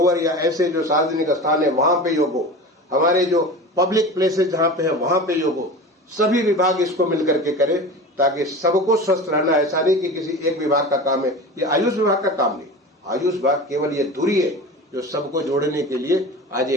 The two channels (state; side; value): normal; both; correlation 0.32